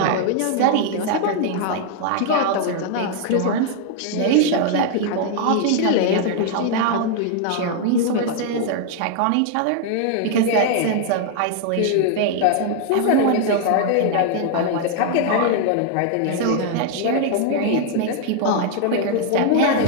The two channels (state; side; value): different; both; correlation 0.00